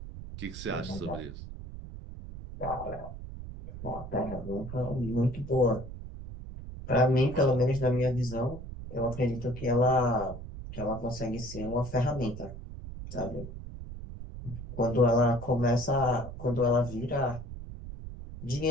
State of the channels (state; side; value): noise; right; rumble, 11 dB below the sound